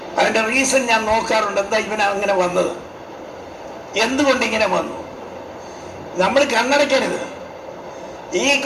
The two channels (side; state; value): both; identical; correlation 1.00